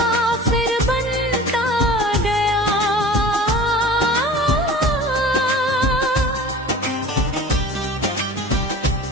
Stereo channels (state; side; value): normal; both; correlation 0.40